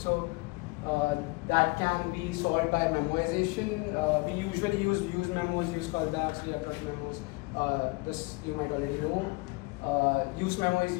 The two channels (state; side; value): quieter; right; 25.9 dB